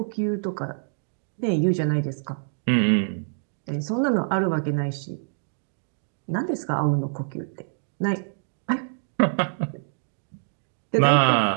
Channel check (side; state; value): left; silent; digital silence